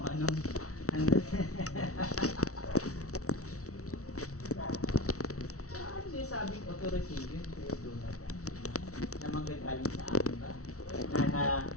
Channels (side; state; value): right; late; 0.64 ms